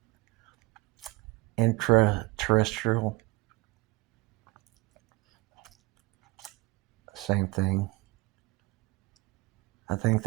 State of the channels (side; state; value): left; quieter; 22.2 dB